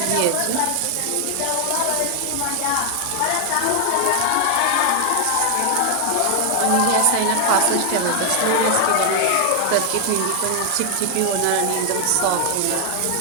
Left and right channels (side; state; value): both; different; correlation 0.00